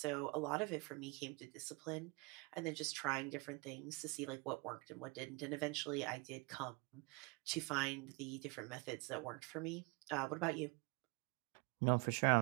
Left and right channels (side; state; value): left; quieter; 27.3 dB